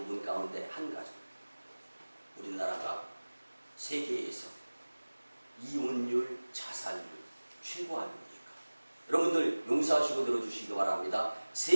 가운데 한 가지, 우리나라가 세계에서 이혼율, 자살률 최고 아닙니까? 여러분들 용서하시고 들어주시기 바랍니다.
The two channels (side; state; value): both; inverted; correlation -1.00